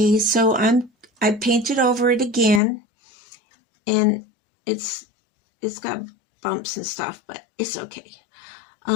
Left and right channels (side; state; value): right; drops out; at 2.6 s